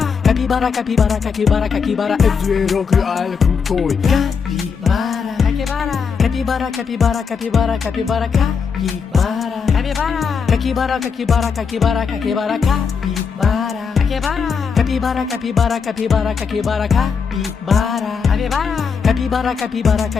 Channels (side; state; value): right; quieter; 5.9 dB